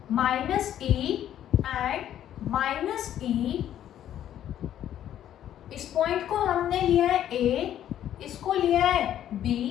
-E and -E। इस पॉइंट को हमने लिया है A, इसको लिया है B।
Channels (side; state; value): right; quieter; 11.1 dB